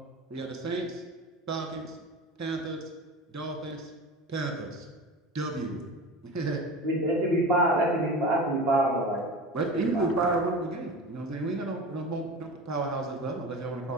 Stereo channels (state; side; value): normal; both; correlation 0.32